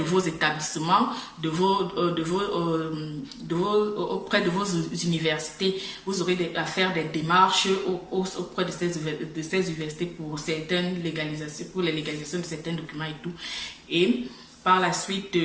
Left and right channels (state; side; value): identical; both; correlation 1.00